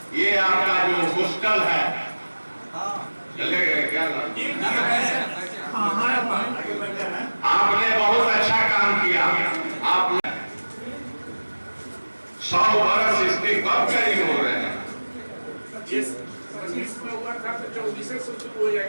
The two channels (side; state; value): both; inverted; correlation -1.00